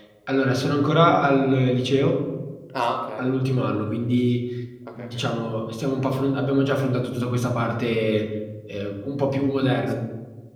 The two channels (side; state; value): both; identical; correlation 1.00